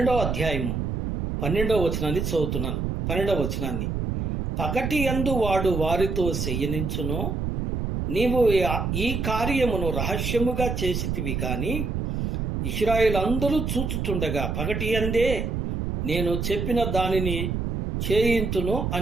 వచనాన్ని చదువుతున్నాను. 12వ వచనాన్ని, పగటి యందు వాడు వారితో చెయ్యనించును, నీవు ఈ కార్యమును రహస్యముగా చేసితివి కాని ఇశ్రాయేలందరూ చూచుచుండగా పగటి యందే నేను చెప్పిన దానిని చేయింతును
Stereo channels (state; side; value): noise; right; rumble, 2 dB below the sound